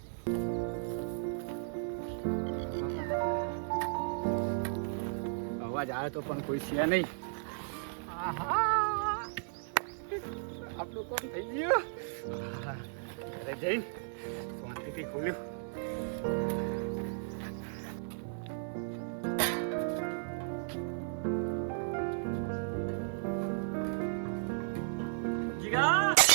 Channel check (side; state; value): left; silent; 55 dB below the other